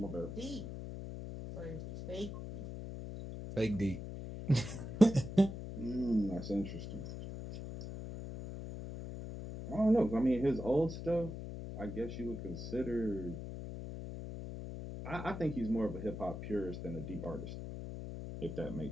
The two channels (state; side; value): noise; left; hum, 8 dB below the sound